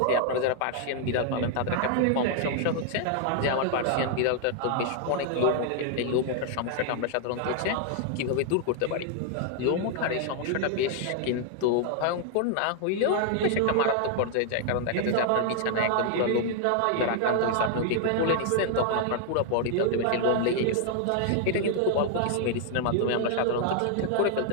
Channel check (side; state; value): both; different; correlation 0.00